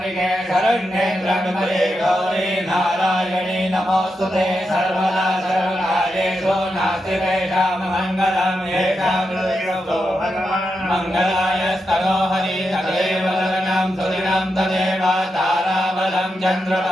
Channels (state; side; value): normal; both; correlation 0.86